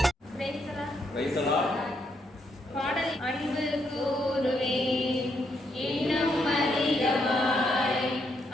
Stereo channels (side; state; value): both; normal; correlation 0.76